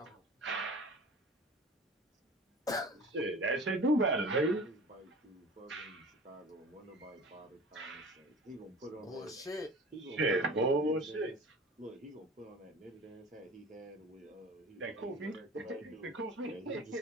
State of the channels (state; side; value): normal; both; correlation 0.39